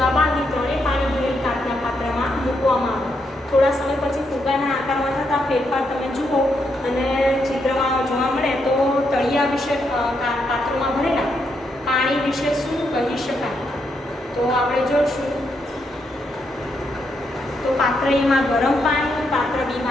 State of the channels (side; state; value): both; normal; correlation 0.79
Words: બાંધી ત્રણેય પાણી ભરેલ કાચના પાત્રમાં મૂકવામાં આવે. થોડા સમય પછી ફુગ્ગાના આકારમાં થતા ફેરફાર તમે જુઓ અને ચિત્રમાં જોવા મળે તો તળિયા વિશે પાત્રોમાં ભરેલા પાણી વિશે શું કહી શકાય? તો આપણે જોઈશું. તો પાત્ર એમાં ગરમ પાણી, પાત્ર